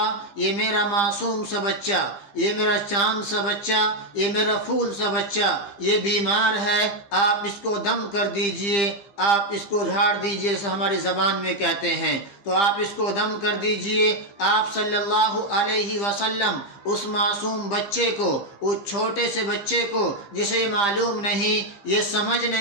یہ میرا معصوم سا بچہ، یہ میرا چاند سا بچہ، یہ میرا پھول سا بچہ، یہ بیمار ہے، آپ اس کو دم کر دیجئے، آپ اس کو جھاڑ دیجئے، جیسے ہماری زبان میں کہتے ہیں، تو آپ اس کو دم کر دیجئے۔ آپ صلی اللہ علیہ وسلم اس معصوم بچے کو، اس چھوٹے سے بچے کو جسے یہ معلوم نہیں، یہ سمجھ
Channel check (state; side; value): late; right; 15 ms